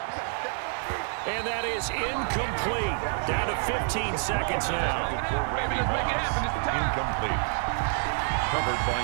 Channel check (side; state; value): left; silent; 55 dB below the other